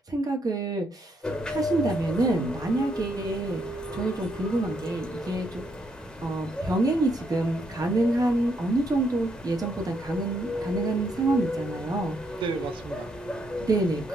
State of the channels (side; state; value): both; normal; correlation 0.75